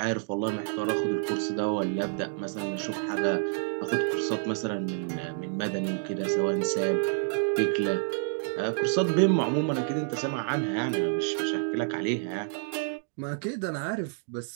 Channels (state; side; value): silent; left; digital silence